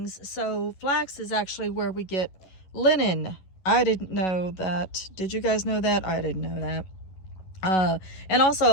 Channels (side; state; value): right; late; 11 ms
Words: So flax is actually where we get linen. I didn't know that. Did you guys know that? I didn't know that. And